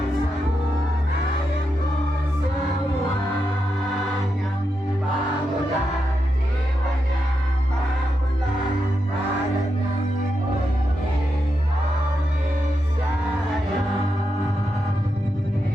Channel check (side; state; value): both; normal; correlation 0.86